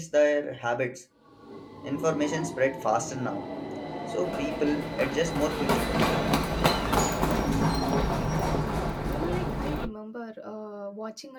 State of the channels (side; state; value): both; identical; correlation 1.00